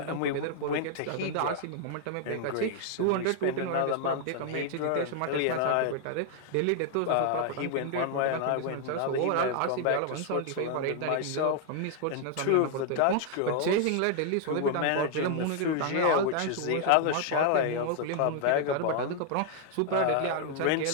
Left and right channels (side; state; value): both; different; correlation 0.00